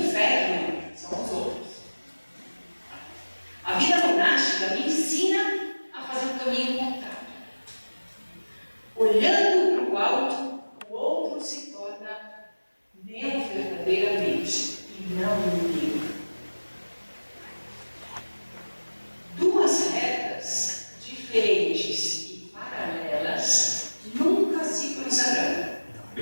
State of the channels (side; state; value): both; inverted; correlation -1.00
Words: são os outros. A vida monástica me ensina a fazer o caminho contrário. Olhando para o alto, o outro se torna meu verdadeiramente e não inimigo. Duas retas diferentes e paralelas nunca se cruzarão.